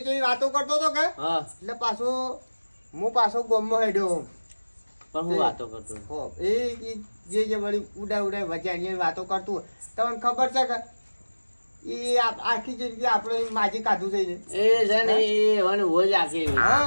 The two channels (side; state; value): both; inverted; correlation -1.00